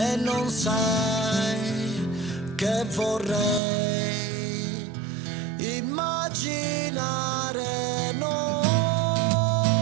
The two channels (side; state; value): left; drops out; at 3.6 s